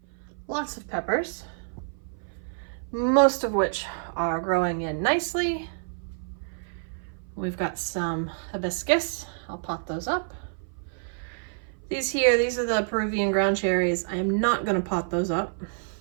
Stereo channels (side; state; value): left; silent; 56 dB below the other